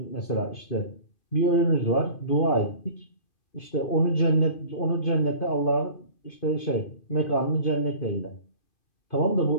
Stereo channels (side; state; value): right; late; 2.5 ms